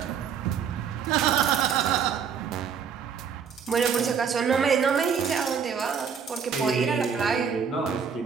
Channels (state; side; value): quieter; left; 6.8 dB